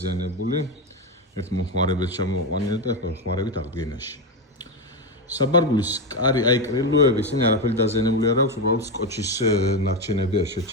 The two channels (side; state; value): both; normal; correlation 0.11